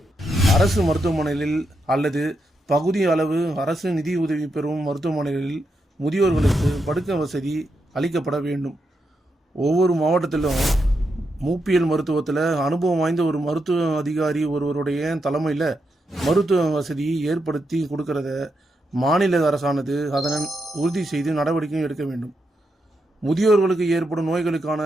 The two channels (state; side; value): normal; both; correlation 0.83